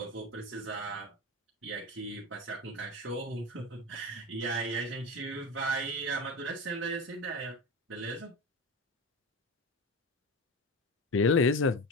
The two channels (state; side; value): normal; both; correlation 0.24